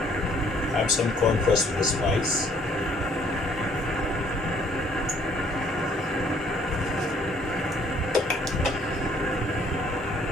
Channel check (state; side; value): normal; both; correlation 0.62